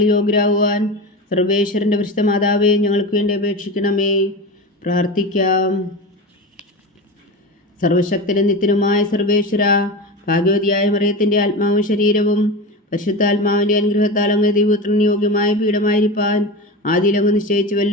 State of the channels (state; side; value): normal; both; correlation 0.25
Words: യോഗ്യരാകുവാൻ സർവേശ്വരൻ്റെ പരിശുദ്ധ മാതാവേ, ഞങ്ങൾക്ക് വേണ്ടി അപേക്ഷിക്കണമേ. പ്രാർത്ഥിക്കാം. സർവശക്തനും നിത്യനുമായ സർവേശ്വര, ഭാഗ്യവതിയായ മറിയത്തിൻ്റെ ആത്മാവും ശരീരവും പരിശുദ്ധാത്മാവിൻ്റെ അനുഗ്രഹത്താൽ അങ്ങ് ദൈവപുത്രന് യോഗ്യമായ പീഠമായിരിക്കാൻ ആദിയിലങ്ങ്